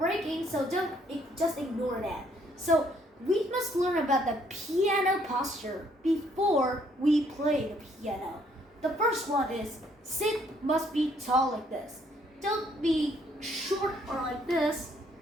so just ignore that. So, we must learn about the piano posture before we play the piano. The first one is sit must be tall like this. Don't be short or like this.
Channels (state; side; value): normal; both; correlation 0.67